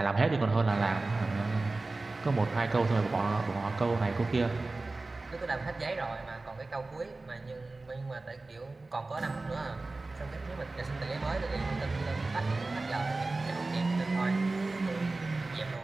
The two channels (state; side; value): quieter; left; 3.3 dB